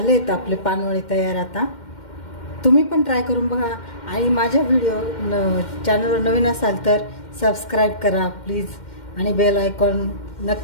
आपले पानवळे तयार. आता तुम्ही पण ट्राय करून बघा. आणि माझ्या चॅनलवर नवीन असाल तर सबस्क्राईब करा प्लीज, आणि बेल आयकॉन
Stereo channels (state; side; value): late; right; 2.1 ms